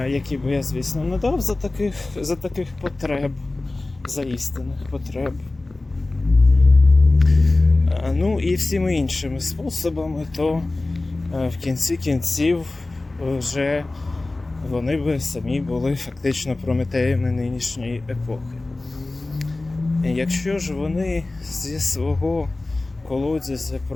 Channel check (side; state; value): right; quieter; 3.0 dB